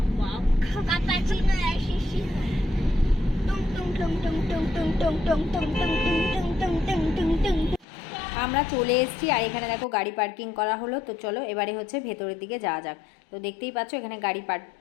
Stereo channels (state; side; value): drops out; right; at 7.9 s